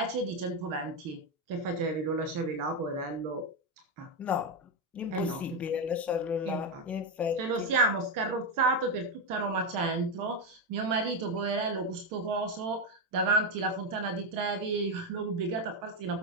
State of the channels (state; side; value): normal; both; correlation 0.08